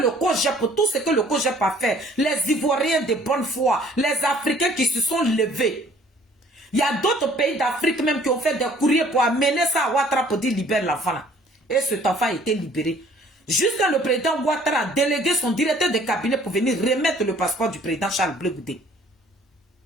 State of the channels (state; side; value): normal; both; correlation 0.56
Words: COJEP, tout ce que le COJEP a fait, les Ivoiriens de bonne foi, les Africains qui se sont levés, il y a d'autres pays d'Afrique même qui ont fait des courriers pour amener ça à Ouattara pour dire libère l'enfant là. Et cet enfant a été libéré. Jusqu'à le président Ouattara a délégué son directeur de cabinet pour venir remettre le passeport du président Charles Blé Goudé.